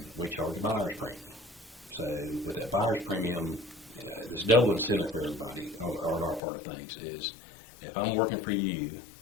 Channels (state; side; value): drops out; right; at 6.4 s